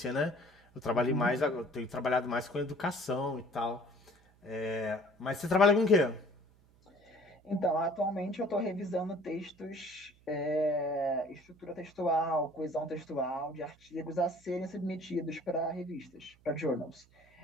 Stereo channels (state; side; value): noise; right; hum, 29 dB below the sound